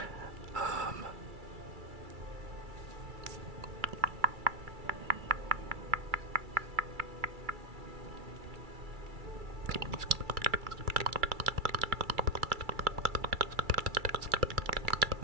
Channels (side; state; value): left; late; 2.3 ms